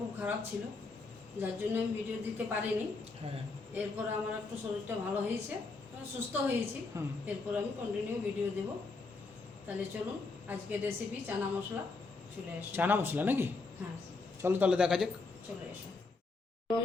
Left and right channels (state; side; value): quieter; right; 3.8 dB